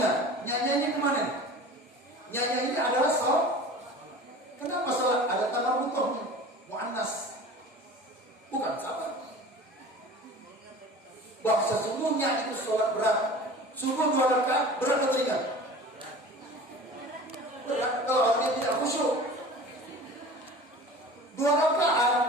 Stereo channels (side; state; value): both; normal; correlation 0.39